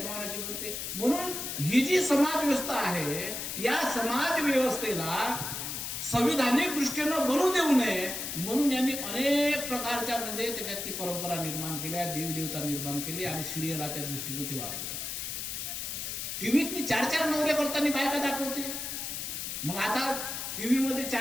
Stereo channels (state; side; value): noise; left; hiss, 5 dB below the sound